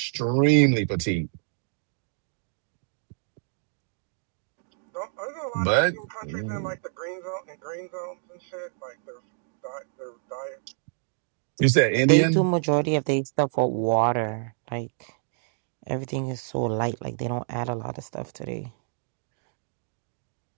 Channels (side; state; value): left; silent; digital silence